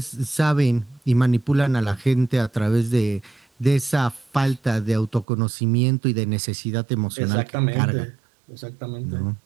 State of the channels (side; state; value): left; drops out; at 5.2 s